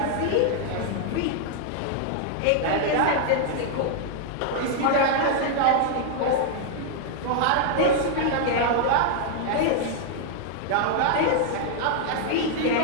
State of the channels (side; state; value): both; different; correlation -0.01